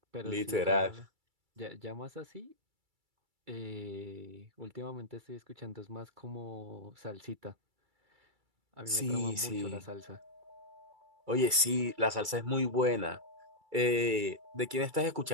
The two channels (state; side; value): late; left; 2.3 ms